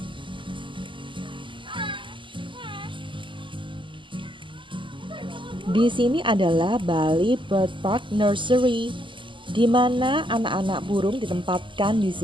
Di sini adalah Bali Bird Park Nursery, di mana anak-anak burung ditempatkan di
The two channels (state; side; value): late; left; 0.24 ms